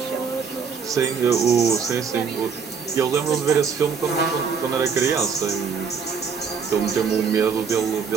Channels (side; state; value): left; quieter; 6.0 dB